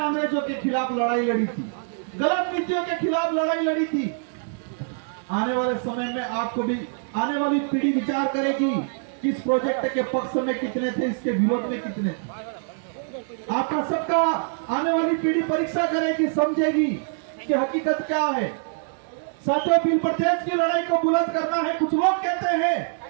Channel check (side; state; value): left; silent; digital silence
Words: के खिलाफ लड़ाई लड़ी थी, गलत नीतियों के खिलाफ लड़ाई लड़ी थी। आने वाले समय में आपको भी, आने वाली पीढ़ी विचार करेगी कि इस प्रोजेक्ट के पक्ष में कितने थे, इसके विरोध में कितने थे। आपका सबका आने वाली पीढ़ी परीक्षा करेगी, समझेगी कि हकीकत क्या है। साथियों, बिल प्रदेश की लड़ाई को बुलंद करना है। कुछ लोग कहते हैं